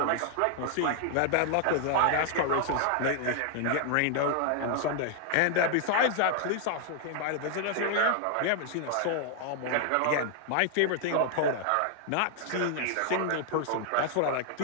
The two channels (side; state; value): both; different; correlation 0.00